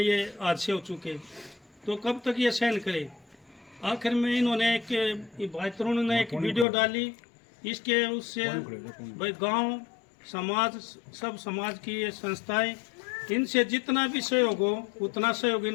हादसे हो चुके, तो कब तक ये सहन करे। आखिर में इन्होंने भाई तरुण ने एक वीडियो डाली, इसके उससे भाई गांव समाज सब समाज की ये संस्थाएं इनसे जितना भी सहयोग हो उतना सहयोग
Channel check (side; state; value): right; drops out; at 6.7 s